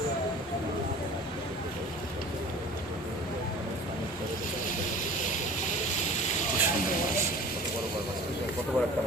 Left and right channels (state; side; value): normal; both; correlation 0.42